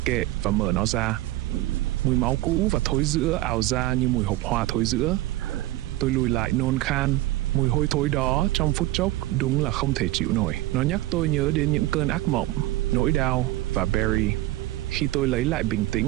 kệ và mở nó ra. Mùi máu cũ và thối rữa ào ra như mùi hộp hoa thối rữa. Tôi lùi lại nôn khan. Mùi hôi thối đó trong phút chốc đúng là không thể chịu nổi. Nó nhắc tôi nhớ đến những cơn ác mộng, nỗi đau và Barry. Khi tôi lấy lại bình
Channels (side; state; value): left; quieter; 16.8 dB